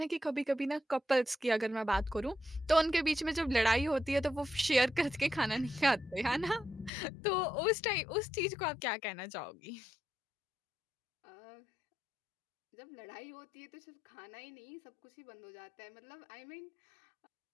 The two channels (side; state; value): right; drops out; at 6.9 s